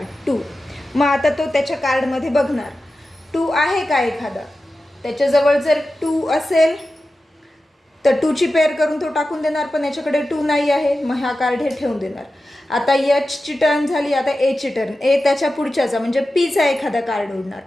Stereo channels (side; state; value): both; normal; correlation 0.93